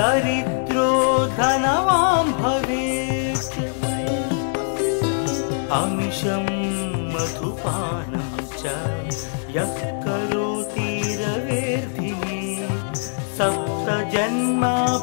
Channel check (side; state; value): right; silent; digital silence